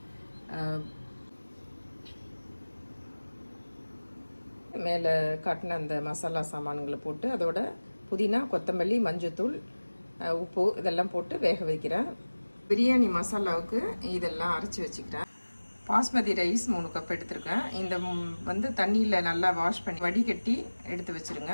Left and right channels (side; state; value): both; inverted; correlation -1.00